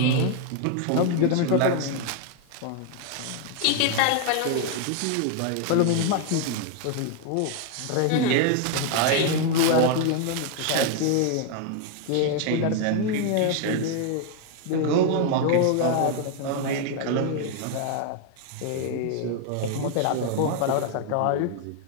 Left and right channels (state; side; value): different; both; correlation 0.00